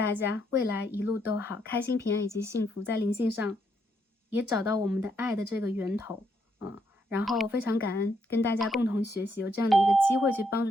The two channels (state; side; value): normal; both; correlation 0.76